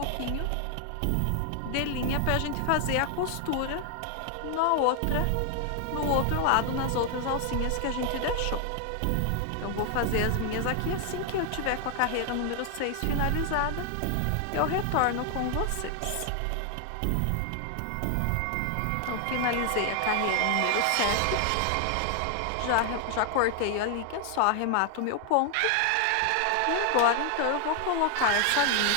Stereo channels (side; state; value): both; different; correlation 0.00